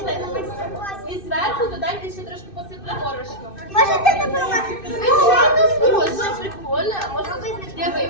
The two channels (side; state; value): right; late; 2.6 ms